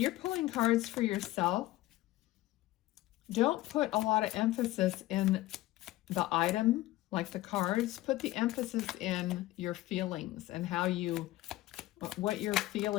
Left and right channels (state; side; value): quieter; right; 16.8 dB